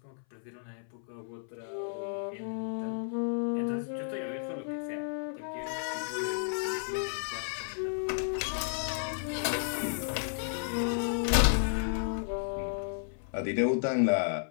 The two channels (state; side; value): silent; right; 56 dB below the other